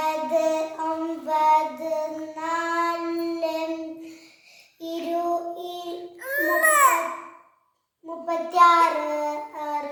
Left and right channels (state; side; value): identical; both; correlation 1.00